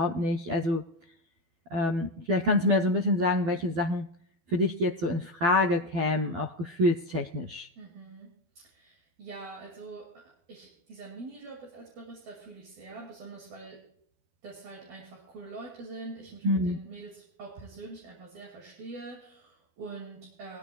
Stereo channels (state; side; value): late; left; 12 ms